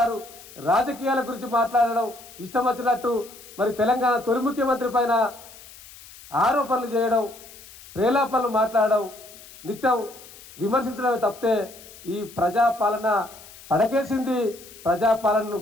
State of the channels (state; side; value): noise; left; hiss, 19 dB below the sound